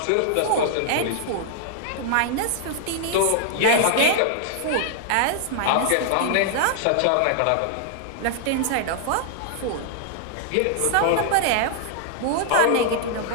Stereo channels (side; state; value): both; different; correlation -0.01